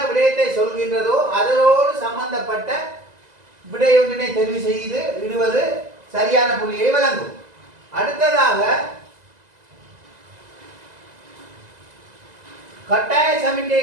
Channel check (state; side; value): late; left; 2.0 ms